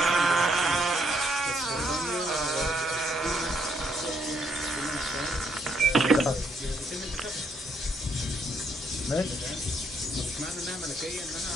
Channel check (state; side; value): normal; both; correlation 0.73